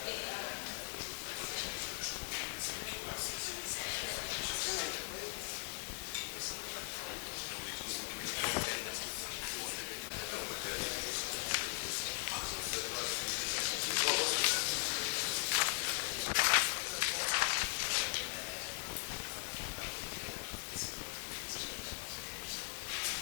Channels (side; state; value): right; silent; 51 dB below the other